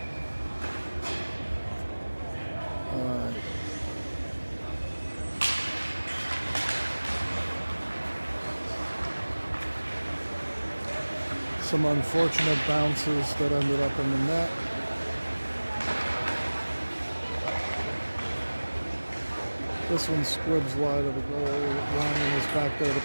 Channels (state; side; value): inverted; both; correlation -1.00